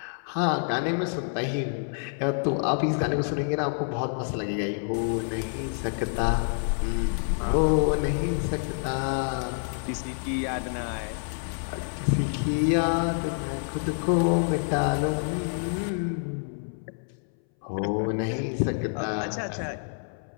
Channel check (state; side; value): silent; right; 60 dB below the other